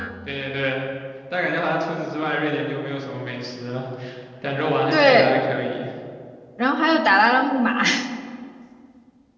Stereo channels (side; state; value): both; identical; correlation 1.00